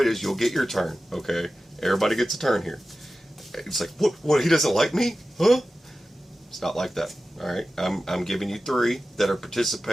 it is. You'll get your turn. Okay, everybody gets a turn here. It's like, what, he doesn't like me? Huh? It's not like that. Alright, I'm giving you 3 that are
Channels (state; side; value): normal; both; correlation 0.94